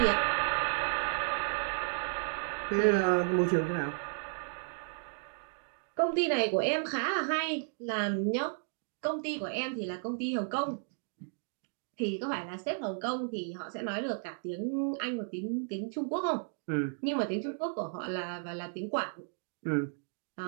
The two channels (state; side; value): silent; left; digital silence